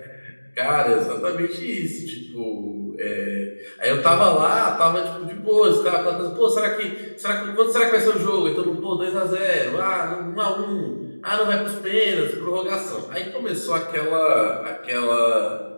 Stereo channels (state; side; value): inverted; both; correlation -1.00